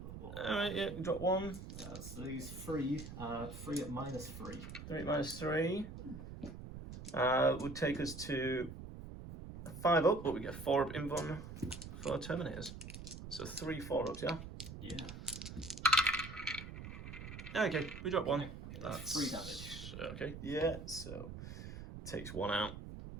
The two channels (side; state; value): right; noise; rumble, 10 dB below the sound